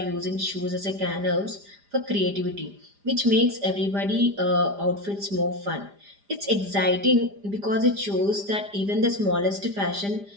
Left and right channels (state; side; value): late; left; 5.0 ms